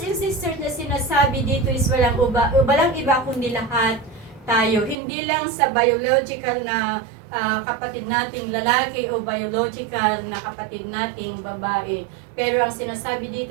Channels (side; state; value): left; drops out; at 5.0 s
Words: and sisters na sinasabi dito is walang iba kundi lahat tayo. Hindi lang sa biological na kapatid nating lalaki o biological na kapatid nating babae. Pero ang sinasabi